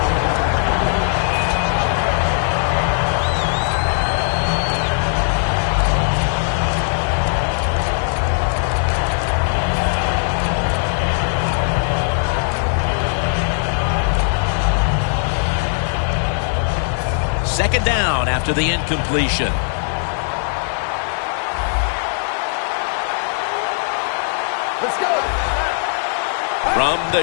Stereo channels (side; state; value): right; silent; digital silence